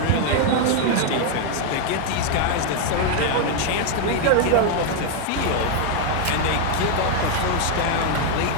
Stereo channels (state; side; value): different; both; correlation 0.01